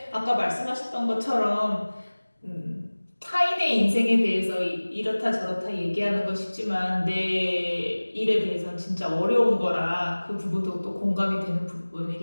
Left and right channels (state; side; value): inverted; both; correlation -1.00